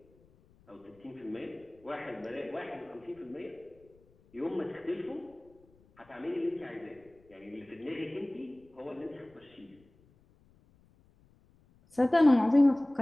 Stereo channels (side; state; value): left; noise; rumble, 30 dB below the sound